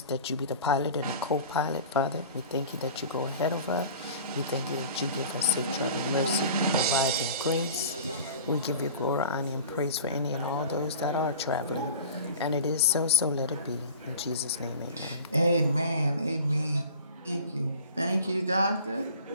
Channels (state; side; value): inverted; both; correlation -0.40